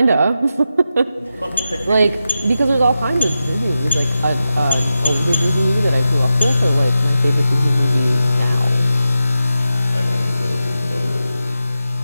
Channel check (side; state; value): both; inverted; correlation -0.90